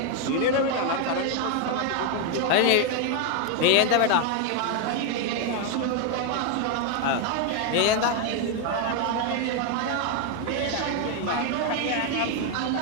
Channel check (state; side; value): different; both; correlation 0.01